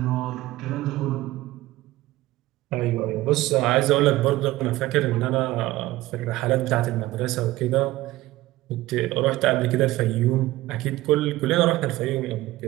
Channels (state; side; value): quieter; left; 17.5 dB